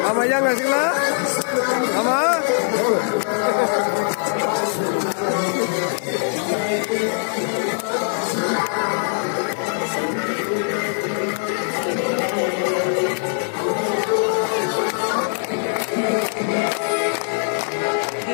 Ama yang ngasih lah, ama.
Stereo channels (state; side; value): silent; right; 65 dB below the other